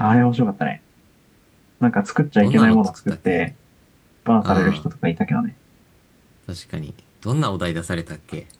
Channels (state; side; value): identical; both; correlation 1.00